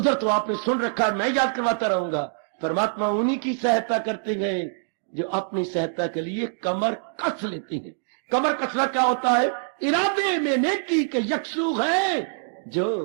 तो आपने सुन रखा, मैं याद करवाता रहूंगा, परमात्मा उन्हीं की सहायता करते हैं जो अपनी सहायता के लिए कमर कस लेते हैं। कमर कसना क्या होता है? इरादे में नेकी के यकसू है जो,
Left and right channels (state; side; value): silent; left; digital silence